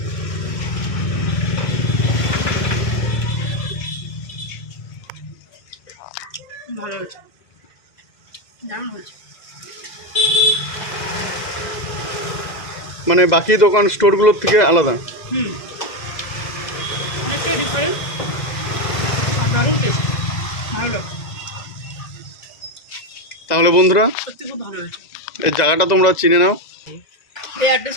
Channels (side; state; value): right; late; 2.0 ms